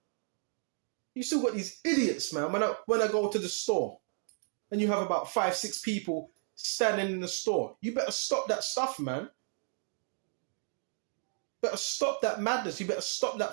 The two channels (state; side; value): silent; left; 56 dB below the other